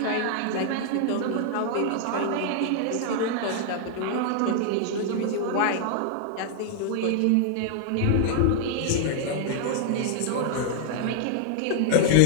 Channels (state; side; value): different; both; correlation -0.01